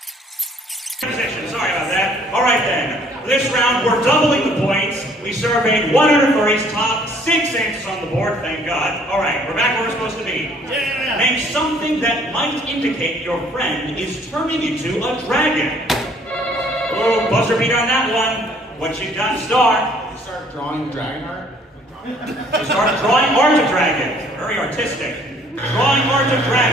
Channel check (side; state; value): both; normal; correlation 0.60